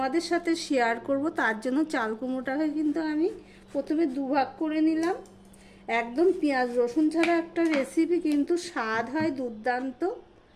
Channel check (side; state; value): both; identical; correlation 1.00